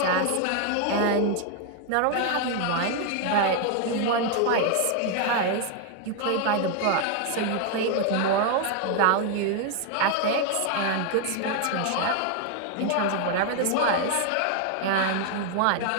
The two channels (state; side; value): different; both; correlation 0.01